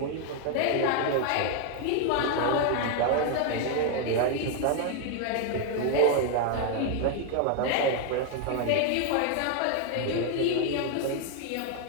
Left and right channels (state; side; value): different; both; correlation 0.01